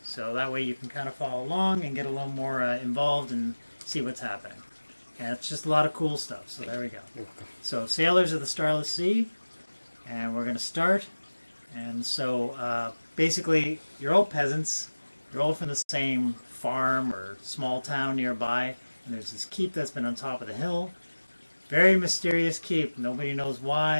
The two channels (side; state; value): both; inverted; correlation -1.00